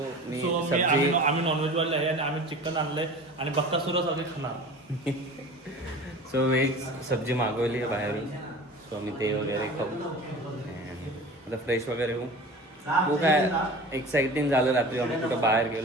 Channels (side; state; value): both; normal; correlation 0.38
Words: मी सब्जी, आम्ही नॉनव्हेज वाले आहे आणि आम्ही चिकन आणलंय आणि बक्कासुरच आम्ही खाणार. सो व्हेज सब्जी मागवली आहे बाहेरून. सो आम्ही ते वगैरे खाऊ. आता फ्रेश वगैरे होऊ. खूप काय एक्साइटिंग झालं रात्री. आम्ही कुठं बाहेर